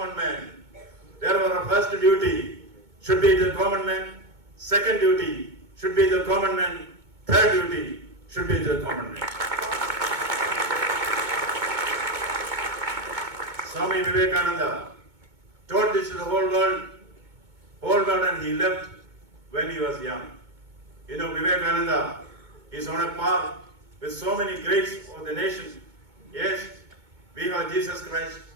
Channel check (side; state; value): left; late; 2.2 ms